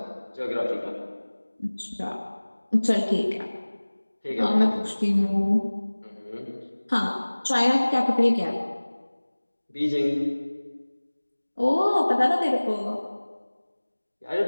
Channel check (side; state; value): both; inverted; correlation -1.00